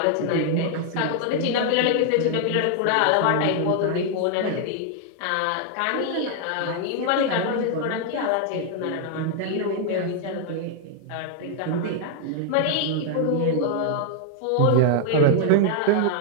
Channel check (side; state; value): both; different; correlation 0.00